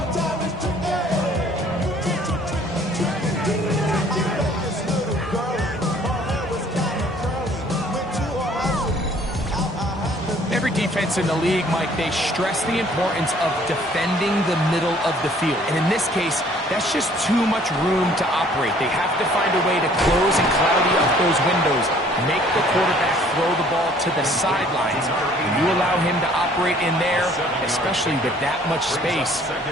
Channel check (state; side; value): normal; both; correlation 0.57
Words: Every defense in the league, Mike, they stress the importance of defending the middle of the field. And in this case, that's just too much room to operate. They have to find a way to close and cloudy up those windows, make the quarterback throw the ball to the sidelines. When you allow him to operate in there, especially with that much space,